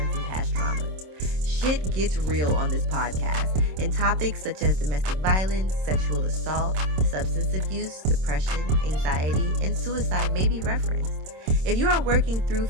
from past traumas. Shit gets real on this podcast, and topics such as domestic violence, sexual assault, substance abuse, depression, anxiety, and suicide may be referenced. If you are working through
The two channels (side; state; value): left; late; 26 ms